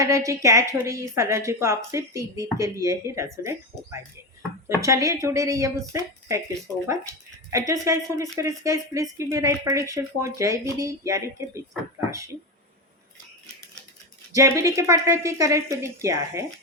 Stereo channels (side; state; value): both; normal; correlation 0.16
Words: कैच हो रही है इस एनर्जी को आप सिर्फ 3 दिन के लिए ही रेजोनेट हो पाएंगे। तो चलिए जुड़े रहिए मुझसे। Thank you so much. And just guys, Holy Spirit, guys, please give me right prediction for जयविधि यानी कि मिथुन राशि। जयविधि के पार्टनर की करंट फीलिंग क्या है?